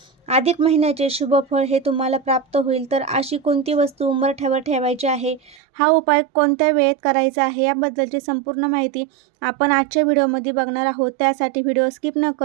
अधिक महिन्याचे शुभ फळ हे तुम्हाला प्राप्त होईल. तर अशी कोणती वस्तू उंबरठ्यावर ठेवायची आहे, हा उपाय कोणत्या वेळेत करायचा आहे याबद्दलची संपूर्ण माहिती आपण आजच्या व्हिडिओमध्ये बघणार आहोत. त्यासाठी व्हिडिओ स्किप न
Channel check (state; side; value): drops out; left; at 5.6 s